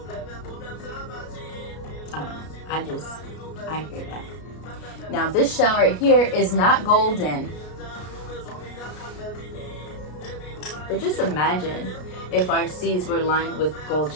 I hear that. Now this shell right here is not golden, but just imagine if our seas were lined with gold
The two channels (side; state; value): right; late; 33 ms